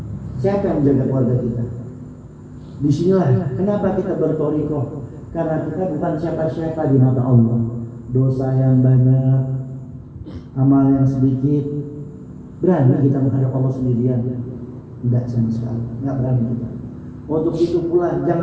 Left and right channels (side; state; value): both; identical; correlation 1.00